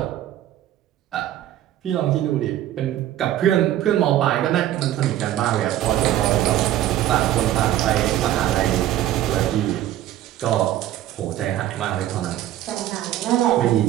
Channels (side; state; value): left; quieter; 12.8 dB